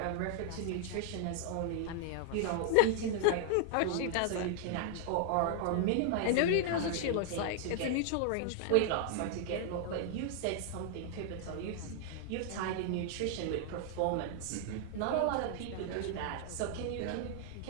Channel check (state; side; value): different; both; correlation 0.00